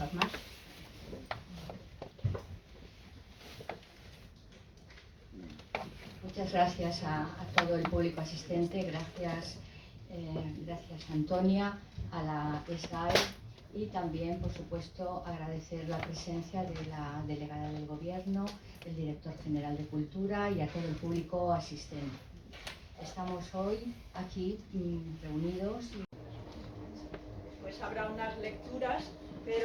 más. Muchas gracias a todo el público asistente, gracias Antonia, a la SGAE y también, por supuesto, agradecer la presencia de la delegada del Gobierno, el director general de Cultura y a todo el público asistente. Estamos hoy aquí reunidos. Pues habrá unas lecturas,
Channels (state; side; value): identical; both; correlation 1.00